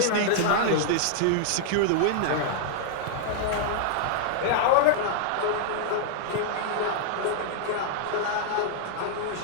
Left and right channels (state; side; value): different; both; correlation -0.01